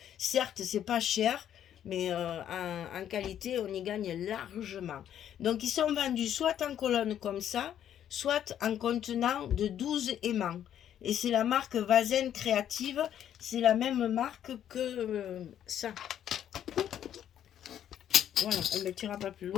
Certes, c'est pas cher, mais en qualité, on y gagne largement. Donc, ils sont vendus soit en colonne comme ça, soit en contenant de 12 aimants. Et c'est la marque Vazen Créative. C'est la même marque que ça. Voilà, on ne mettra pas plus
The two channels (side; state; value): right; quieter; 10.3 dB